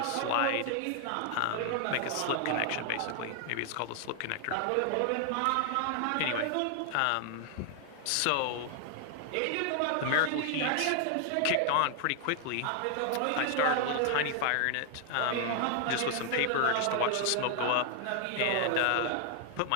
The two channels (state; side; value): different; both; correlation 0.00